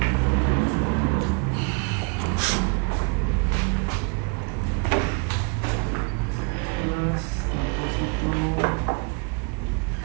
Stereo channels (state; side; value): quieter; left; 34.2 dB